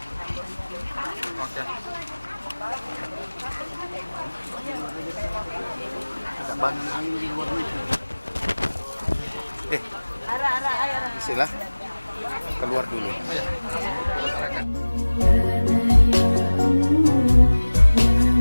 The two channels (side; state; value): both; inverted; correlation -1.00